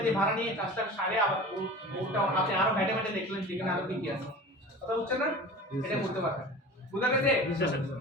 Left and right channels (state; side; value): normal; both; correlation 0.37